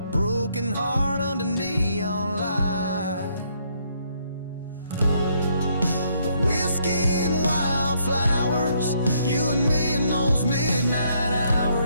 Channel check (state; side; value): inverted; both; correlation -0.71